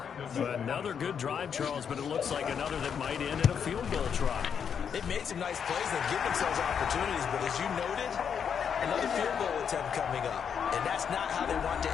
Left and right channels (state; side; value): quieter; right; 7.4 dB